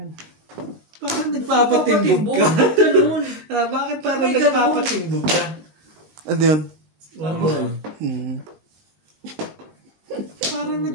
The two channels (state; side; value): late; left; 19 ms